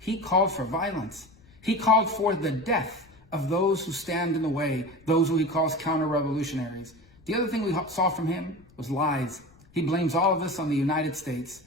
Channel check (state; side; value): noise; left; rumble, 27 dB below the sound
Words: called for violence. He called for the death of those who stand in the way, those who he calls counter-revolutionaries. The other thing we saw from him was lies. He blames all of this on the United States.